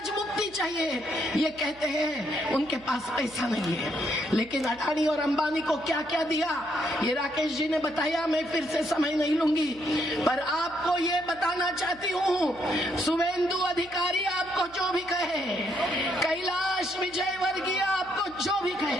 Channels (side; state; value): right; noise; hum, 24 dB below the sound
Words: मुक्ति चाहिए। ये कहते हैं उनके पास पैसा नहीं है, लेकिन अडानी और अंबानी को क्या क्या दिया ये राकेश जी ने बताया, मैं फिर से समय नहीं लूंगी। पर आपको ये बताना चाहती हूँ, शुभेंदु अधिकारी आपको जो भी कहे, कैलाश विजयवर्गीय आपको जो भी